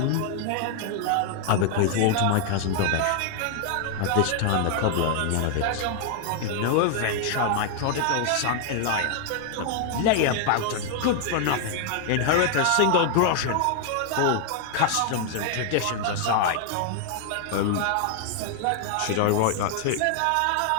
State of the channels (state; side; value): different; both; correlation 0.00